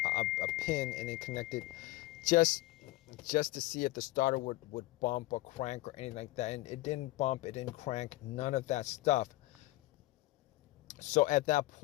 pin, and then connected just to see if the starter would bump or crank or anything like that. And it didn't bump, it didn't crank, none of that stuff. So at that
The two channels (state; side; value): quieter; right; 18.4 dB